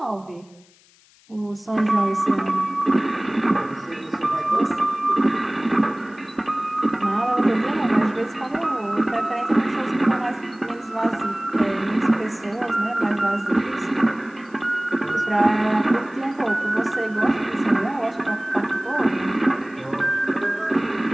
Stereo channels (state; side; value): noise; left; hiss, 30 dB below the sound